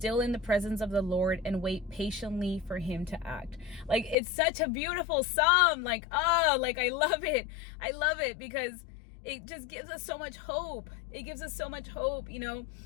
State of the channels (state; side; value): drops out; right; at 4.2 s